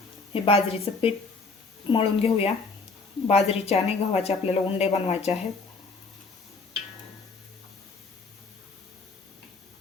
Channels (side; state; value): right; quieter; 4.1 dB